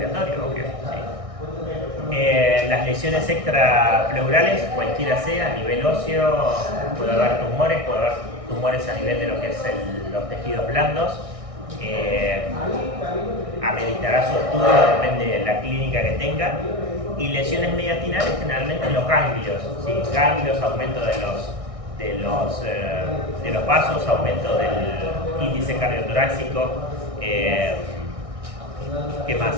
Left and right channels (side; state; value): left; late; 1.6 ms